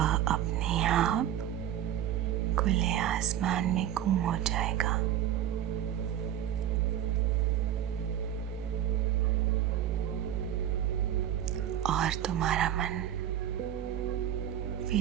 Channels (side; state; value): left; quieter; 11.1 dB